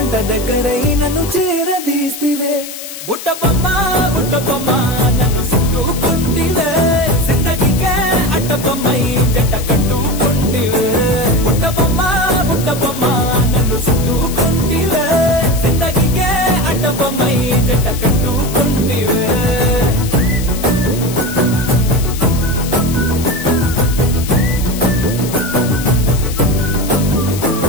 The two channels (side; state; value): left; noise; hiss, 11 dB below the sound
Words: దగ్గరై నన్ను చేరదీస్తివే. బుట్ట బొమ్మ నన్ను చుట్టుకుంటివే, జిందగీకే అట్ట బొమ్మై జంట కట్టుకుంటివే. బుట్ట బొమ్మ నన్ను చుట్టుకుంటివే, జిందగీకే అట్ట బొమ్మై జంట కట్టుకుంటివే.